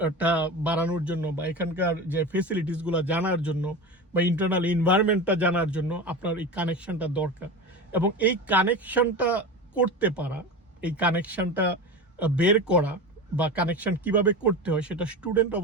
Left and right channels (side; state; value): both; normal; correlation 0.27